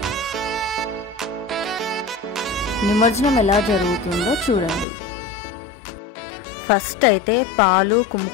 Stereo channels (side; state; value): right; drops out; at 4.9 s